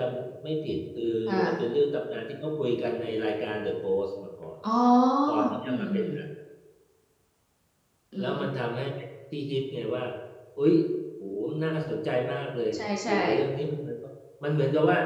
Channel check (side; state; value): both; identical; correlation 1.00